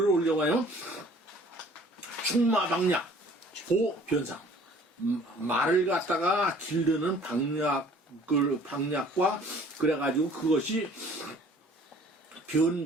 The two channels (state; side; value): normal; both; correlation 0.53